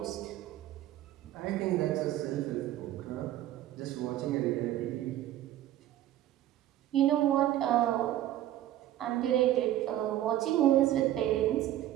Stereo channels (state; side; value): quieter; left; 13.2 dB